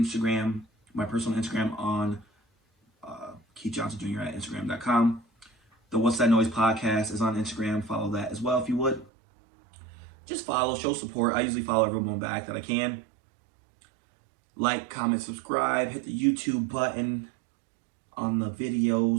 my personal Instagram on Keith Johnson Jr. at Instagram.com. The What's That Noise podcast is on Instagram. Follow that as well if you would. Just follow, show support. I usually follow everyone back that I can. Like, comment, subscribe. Hit the YouTube button on the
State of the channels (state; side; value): drops out; left; at 9.1 s